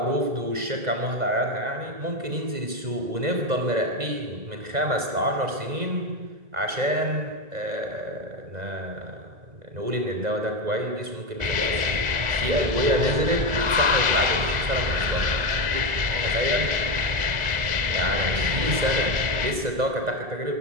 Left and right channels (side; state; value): left; late; 2.0 ms